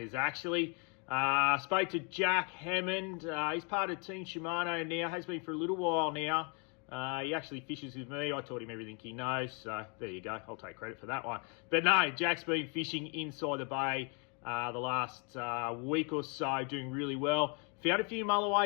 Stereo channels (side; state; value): right; quieter; 35.3 dB